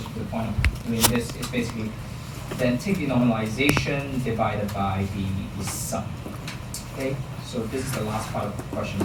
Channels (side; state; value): both; identical; correlation 1.00